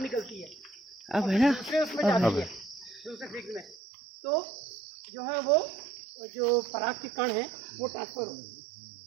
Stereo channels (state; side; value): drops out; left; at 3.8 s